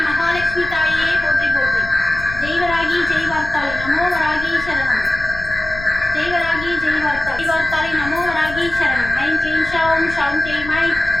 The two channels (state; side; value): noise; left; rumble, 12 dB below the sound